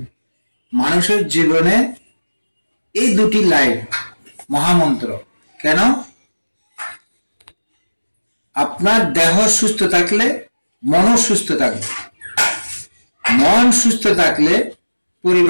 মানুষের জীবনে এই দুটি লাইন মহামন্ত্র। কেন? আপনার দেহ সুস্থ থাকলে মনও সুস্থ থাকবে, মন সুস্থ থাকলে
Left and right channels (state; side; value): inverted; both; correlation -1.00